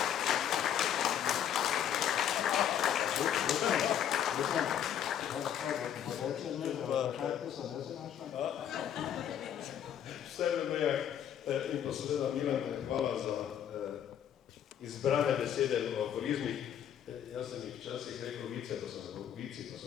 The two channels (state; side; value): quieter; right; 9.7 dB